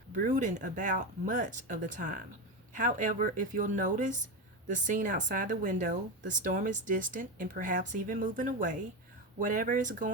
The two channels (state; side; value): normal; both; correlation 0.16